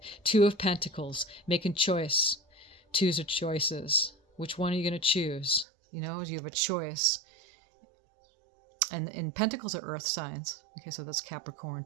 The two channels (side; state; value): left; drops out; at 5.7 s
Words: 2 of Pentacles, making choice. 2s are choices. Which one are you going to choose? You know, you have a choice. And Pentacles are earth signs. Okay, so that's Capricorn,